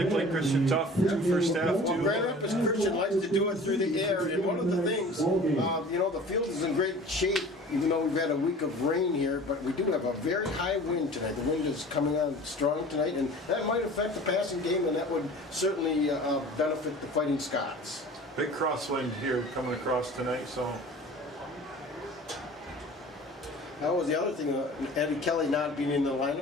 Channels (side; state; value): both; normal; correlation 0.43